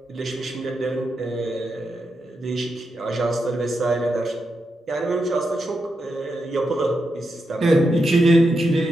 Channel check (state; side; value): normal; both; correlation 0.85